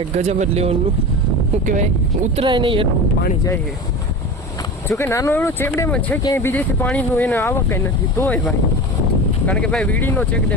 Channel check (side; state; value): both; normal; correlation 0.30